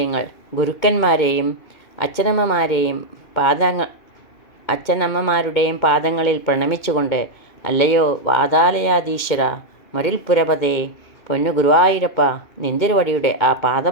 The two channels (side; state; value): right; late; 2.2 ms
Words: ഗുരുക്കന്മാരെയും അച്ഛനമ്മമാരുടെയും പാദങ്ങളിൽ പ്രണമിച്ചുകൊണ്ട്, അല്ലയോ വാതാലയാധീശ്വര, മരുൽപുരപതേ, പൊന്നു ഗുരുവായൂരപ്പ, നിന്തിരുവടിയുടെ ആ